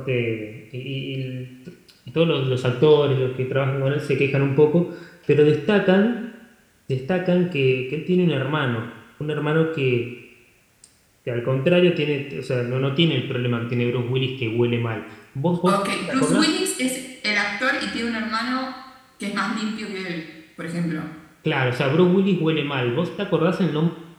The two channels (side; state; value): both; identical; correlation 1.00